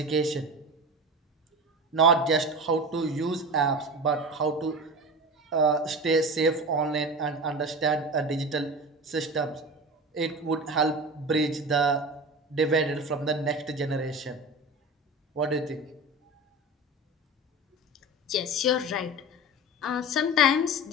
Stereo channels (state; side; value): normal; both; correlation 0.30